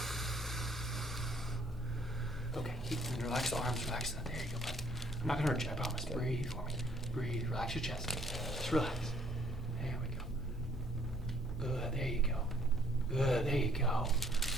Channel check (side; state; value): both; normal; correlation 0.62